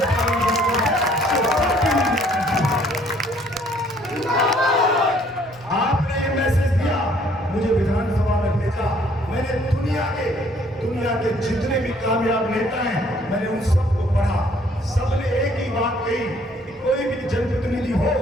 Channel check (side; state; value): both; normal; correlation 0.61